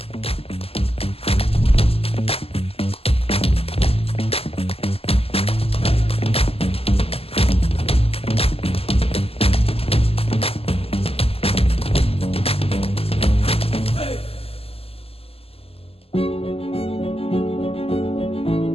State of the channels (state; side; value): late; right; 0.28 ms